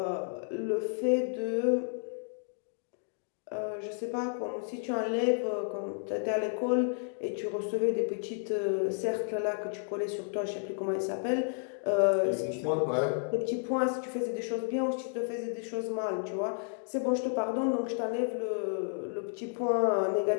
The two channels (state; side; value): silent; right; 55 dB below the other